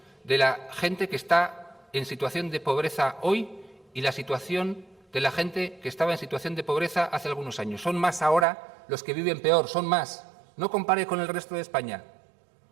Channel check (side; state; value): left; drops out; at 8.5 s